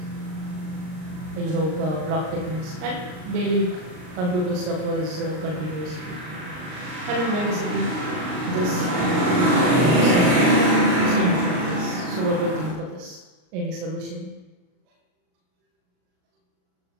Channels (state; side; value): late; left; 39 ms